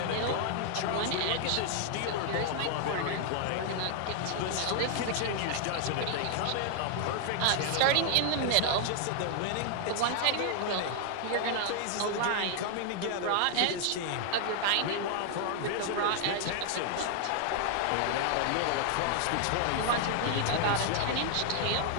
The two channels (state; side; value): different; both; correlation 0.00